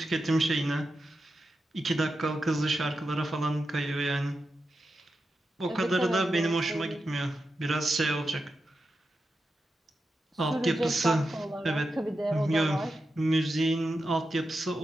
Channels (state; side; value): normal; both; correlation 0.89